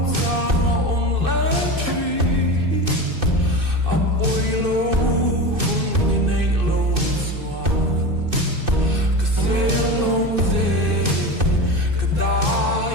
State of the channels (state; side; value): late; left; 2.6 ms